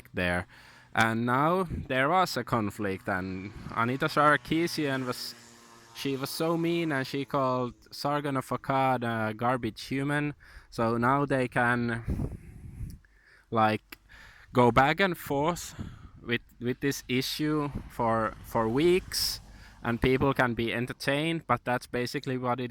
there. And now there was a conflict, and Anita Sarkeesian was so mean, and she called Sargon of Akkad a garbage human. So now they can like go back and forth with this issue for weeks, and people can be entertained, but that's basically what it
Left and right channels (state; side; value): identical; both; correlation 1.00